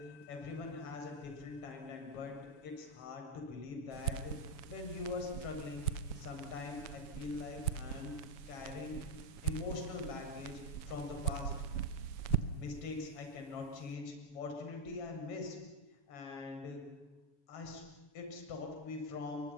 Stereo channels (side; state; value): right; late; 7.0 ms